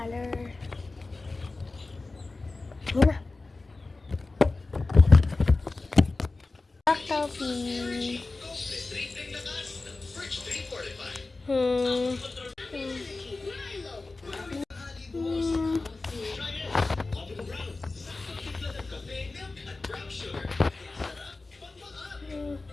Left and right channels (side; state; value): right; quieter; 3.5 dB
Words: Yun na. Coffee. Hmm.